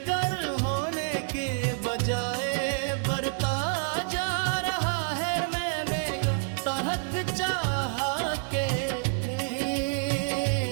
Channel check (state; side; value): silent; left; digital silence